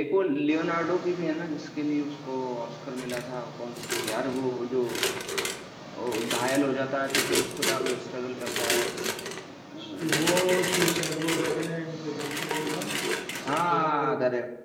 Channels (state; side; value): identical; both; correlation 1.00